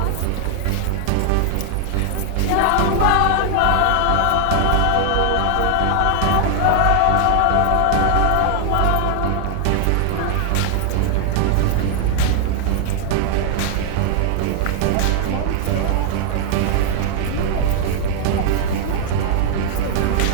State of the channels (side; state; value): both; different; correlation 0.00